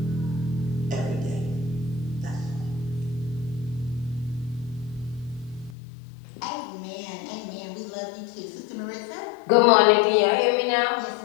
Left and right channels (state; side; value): drops out; right; at 5.8 s